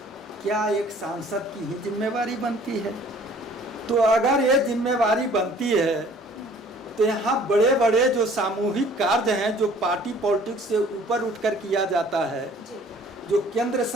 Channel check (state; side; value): normal; both; correlation 0.54